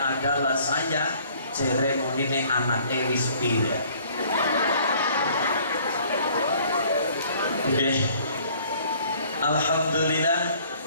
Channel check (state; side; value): inverted; both; correlation -0.57